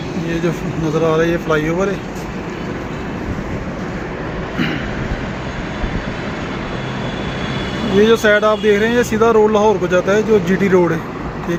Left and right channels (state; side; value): identical; both; correlation 1.00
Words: ये जो नज़र आ रहा है ये फ्लाईओवर है। ये जो साइड आप देख रहे हैं ये सीधा रोड लाहौर को जाता है, जो जीटी रोड है,